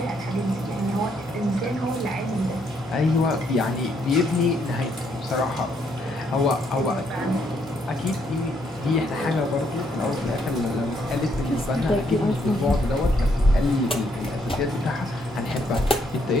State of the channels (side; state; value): both; normal; correlation 0.72